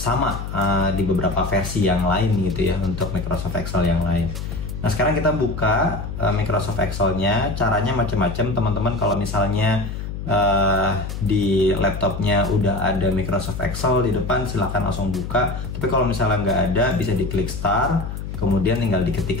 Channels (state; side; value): noise; left; hum, 6 dB below the sound